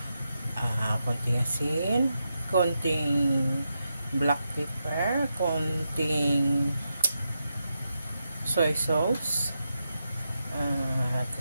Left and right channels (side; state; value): both; inverted; correlation -0.86